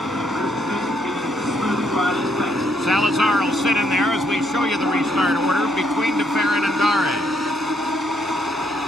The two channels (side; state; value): both; normal; correlation 0.73